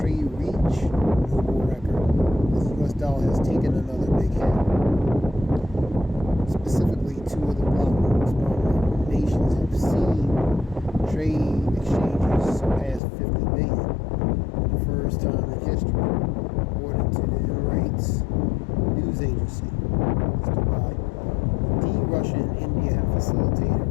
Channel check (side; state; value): right; drops out; at 13.0 s